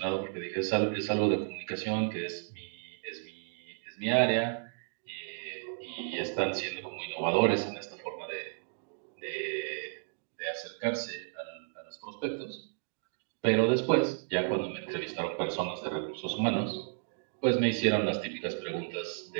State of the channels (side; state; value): left; silent; digital silence